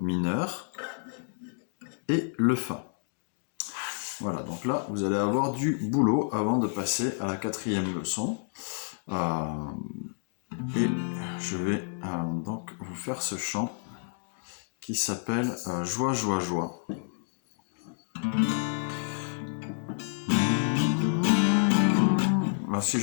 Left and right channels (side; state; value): right; silent; digital silence